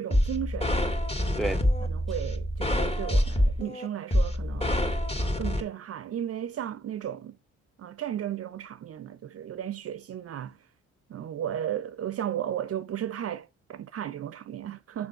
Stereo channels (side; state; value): both; normal; correlation 0.66